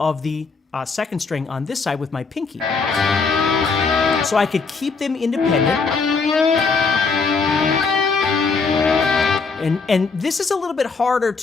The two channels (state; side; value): quieter; right; 4.6 dB